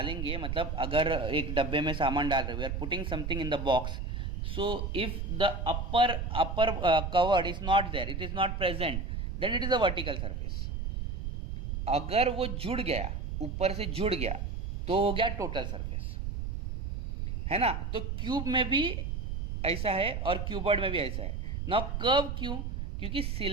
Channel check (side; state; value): right; noise; rumble, 4 dB below the sound